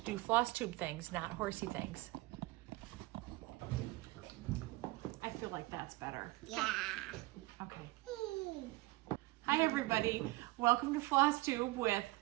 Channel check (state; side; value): quieter; left; 20.8 dB